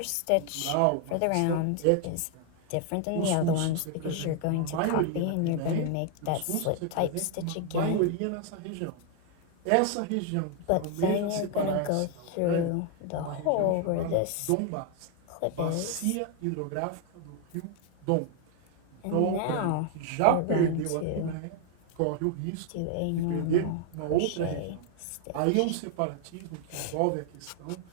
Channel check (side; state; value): both; different; correlation 0.00